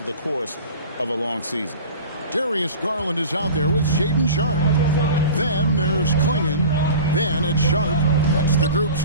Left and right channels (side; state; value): both; inverted; correlation -0.38